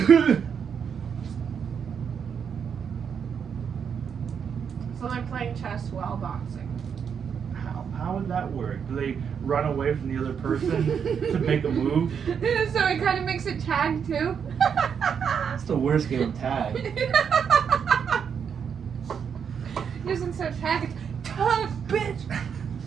So they're playing chess while boxing. How would that work? Do they run away from the other person to make a move? So it kind of makes it tag too. That's the worst game of tag. Using so tag, it's tag, bitch.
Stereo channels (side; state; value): left; quieter; 7.2 dB